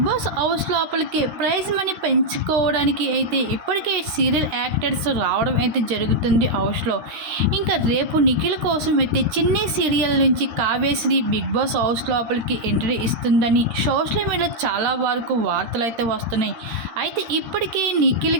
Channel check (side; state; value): left; late; 13 ms